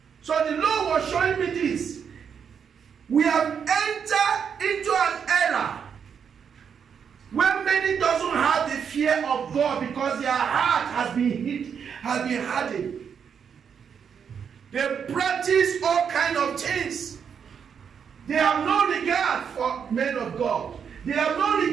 So the Lord was showing me this. We have entered into an era where many doesn't have the fear of God because their heart has been hardened. They practice all kind of things. They have no regard for men of God. They have no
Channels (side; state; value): left; quieter; 7.2 dB